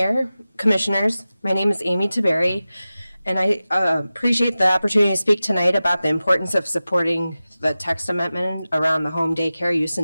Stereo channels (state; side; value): inverted; both; correlation -0.96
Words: Commissioners. My name is Amy Taberry, and I appreciate the opportunity to speak tonight about the importance of supporting the text amendment around the home daycare use